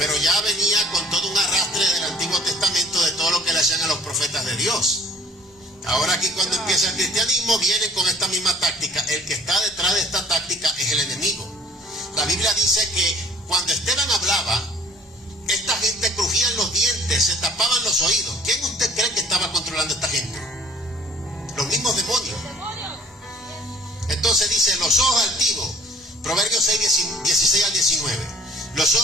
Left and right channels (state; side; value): normal; both; correlation 0.53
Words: ya venía con todo un arrastre del Antiguo Testamento de todo lo que le hacían a los profetas de Dios. Ahora aquí cuando empieza el cristianismo vienen con esta misma táctica. El que está detrás de esta táctica es el enemigo. La Biblia dice que cuando Esteban hablaba, esta gente crujía los dientes, se tapaban los oídos. ¿Quién usted cree que estaba controlando a esta gente? Los mismos demonios. Entonces dice: los ojos altivos, Proverbios 6, 16 al 19. Los